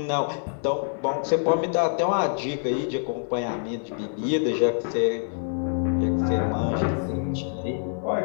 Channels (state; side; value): silent; right; 61 dB below the other